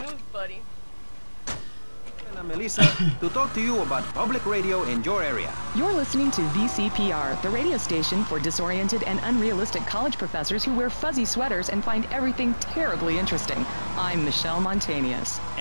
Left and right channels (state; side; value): inverted; both; correlation -1.00